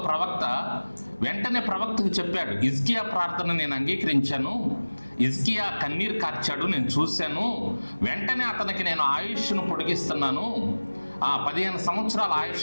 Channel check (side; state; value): both; inverted; correlation -1.00